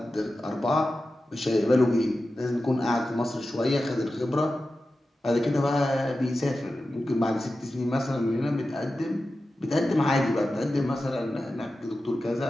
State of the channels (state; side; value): normal; both; correlation 0.93